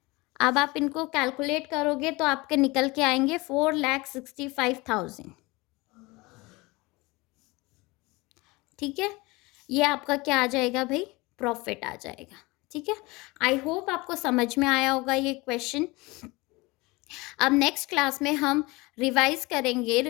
अब आप इनको कैलकुलेट करोगे तो आपके निकल के आएंगे 4,65,000। ठीक है, ये आपका क्या आ जाएगा भाई? प्रॉफिट आ जाएगा। ठीक है, आई होप आपको समझ में आया होगा ये क्वेश्चन। अब नेक्स्ट क्लास में हम रिवाइज करेंगे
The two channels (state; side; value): quieter; right; 23.5 dB